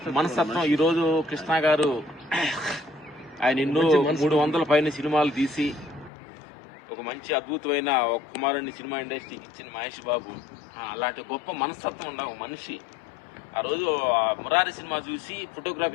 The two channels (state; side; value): drops out; right; at 6.1 s